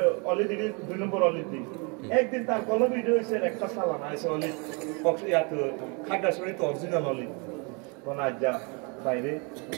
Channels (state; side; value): quieter; left; 32.7 dB